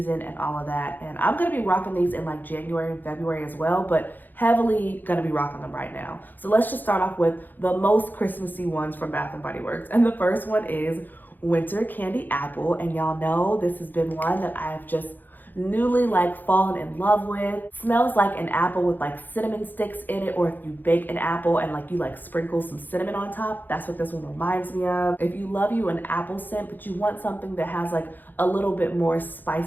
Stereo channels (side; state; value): right; late; 0.088 ms